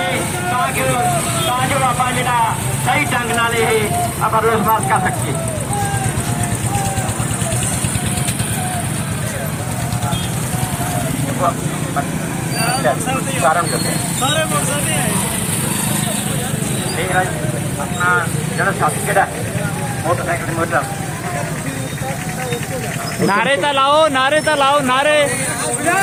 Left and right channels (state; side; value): identical; both; correlation 1.00